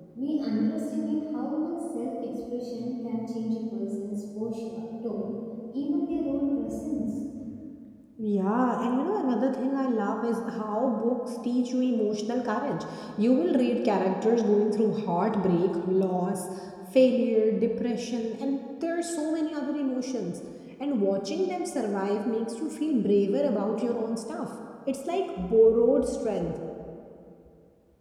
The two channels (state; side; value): identical; both; correlation 1.00